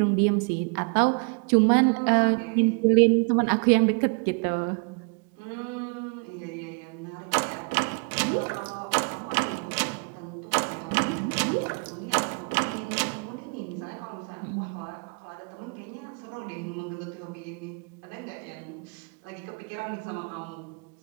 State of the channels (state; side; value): quieter; left; 37.5 dB